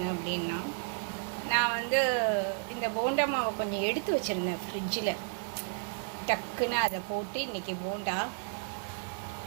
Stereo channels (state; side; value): silent; left; digital silence